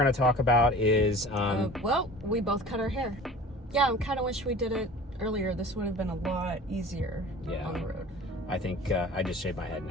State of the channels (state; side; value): normal; both; correlation 0.41